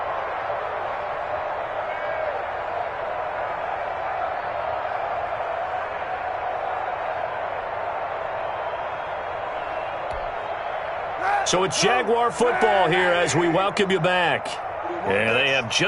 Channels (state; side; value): identical; both; correlation 1.00